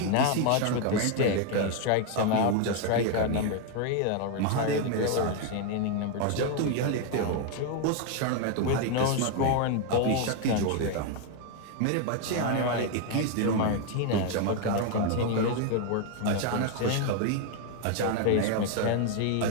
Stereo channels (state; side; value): different; both; correlation 0.01